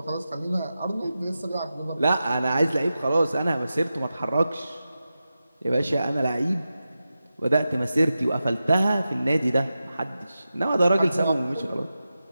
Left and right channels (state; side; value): inverted; both; correlation -0.92